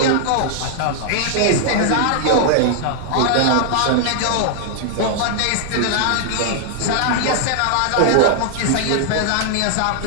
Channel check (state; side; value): different; both; correlation -0.01